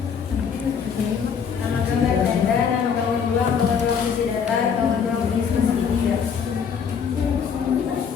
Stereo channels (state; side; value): quieter; right; 6.8 dB